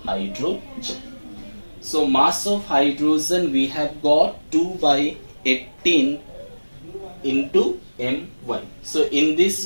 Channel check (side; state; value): both; inverted; correlation -1.00